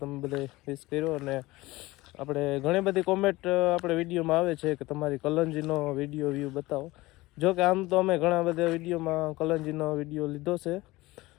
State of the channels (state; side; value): quieter; right; 19.8 dB